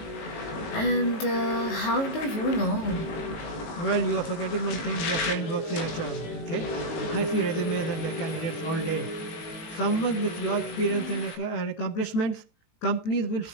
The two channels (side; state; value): right; late; 18 ms